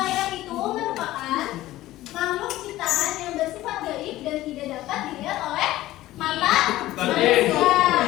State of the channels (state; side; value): quieter; right; 15.9 dB